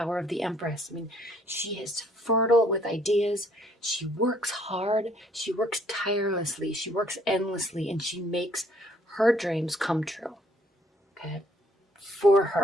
of the Empress. I mean, she is fertile with ideas. She works hard. She works tirelessly. She works endlessly, and she makes her dreams come true. Okay? For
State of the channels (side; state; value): both; normal; correlation 0.62